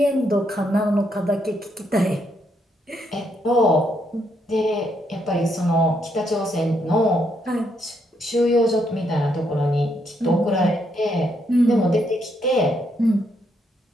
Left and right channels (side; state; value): both; normal; correlation 0.76